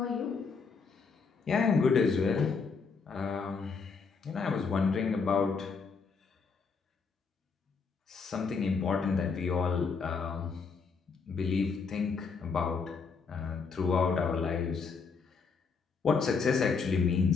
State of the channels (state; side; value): quieter; right; 5.2 dB